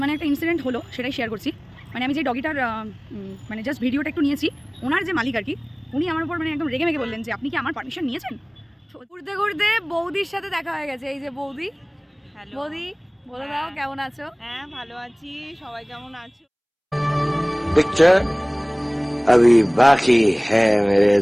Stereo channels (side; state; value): both; identical; correlation 1.00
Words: মানে একটা ইনসিডেন্ট হলো, সেটাই শেয়ার করছি। মানে আমি যে ডগিটার মানে জাস্ট ভিডিওটা একটু নিয়েছি, ওনার যে মালিক আর কি, উনি আমার উপর মানে একদম রেগে মেগে বললেন যে আপনি কি আমার পারমিশন নিয়েছেন। ঘুরতে ঘুরতে বৌদির সাথে দেখা হয়ে গেছে। এই যে বৌদি। হ্যালো বৌদি বলে দাও কেমন আছো? হ্যাঁ ভালো আছি, সবাই কেমন আছো? पिक्चर अभी बाकी है मेरे